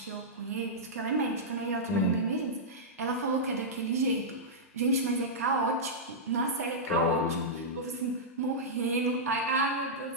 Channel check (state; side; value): normal; both; correlation -0.11